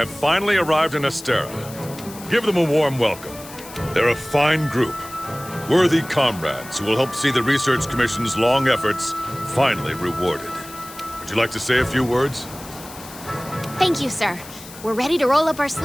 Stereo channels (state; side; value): noise; left; hiss, 16 dB below the sound